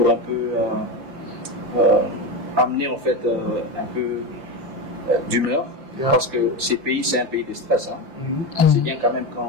un peu amener en fait un peu d'humeur. Parce que ces pays, c'est un pays de stress. C'est bien quand même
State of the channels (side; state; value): left; late; 5.8 ms